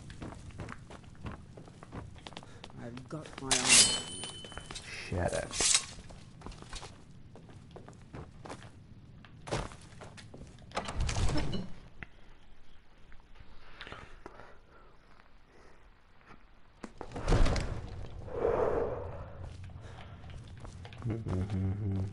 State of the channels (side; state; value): both; identical; correlation 1.00